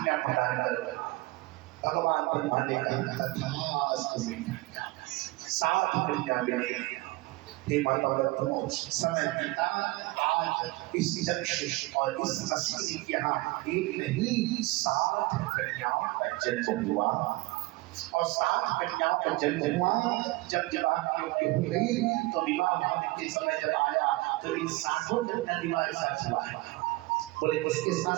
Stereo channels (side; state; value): left; quieter; 21.9 dB